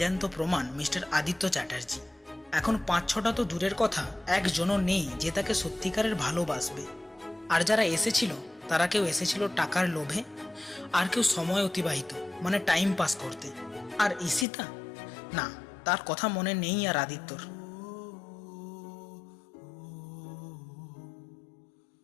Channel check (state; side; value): drops out; right; at 14.5 s